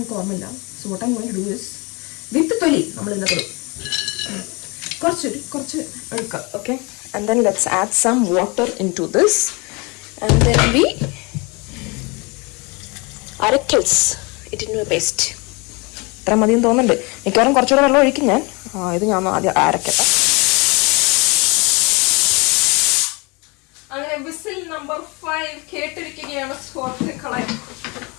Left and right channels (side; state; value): right; quieter; 28.3 dB